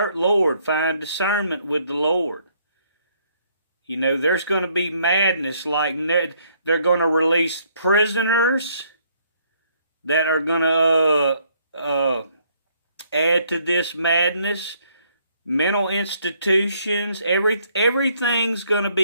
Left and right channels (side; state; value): both; inverted; correlation -0.67